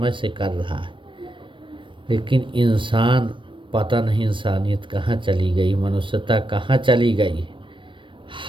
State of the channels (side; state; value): left; late; 0.24 ms